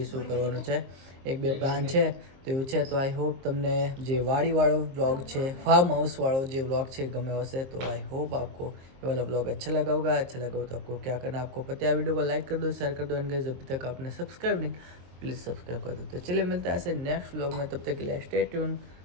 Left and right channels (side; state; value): left; late; 22 ms